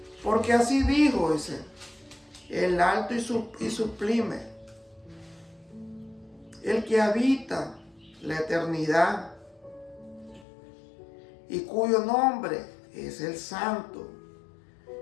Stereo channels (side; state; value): right; drops out; at 10.5 s